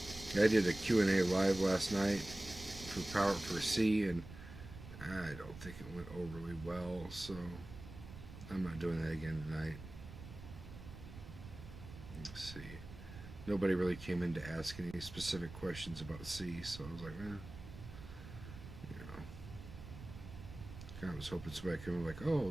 I did a Q&A live last night for C, and I don't think it went overly well, so I'm not doing that again tonight. Let's see. Nobody really came in to ask any specific questions about C, so I was like, kind of was hoping somebody could come like,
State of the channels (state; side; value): noise; right; rumble, 13 dB below the sound